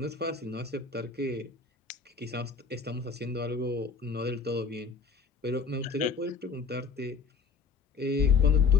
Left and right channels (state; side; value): quieter; right; 5.1 dB